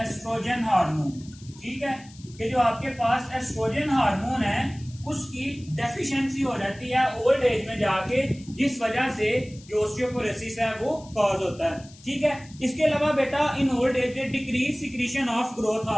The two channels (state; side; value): noise; left; hiss, 23 dB below the sound